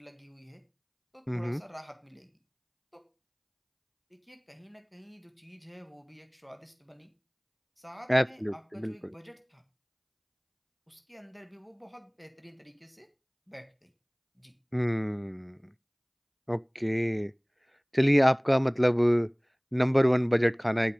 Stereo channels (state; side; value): identical; both; correlation 1.00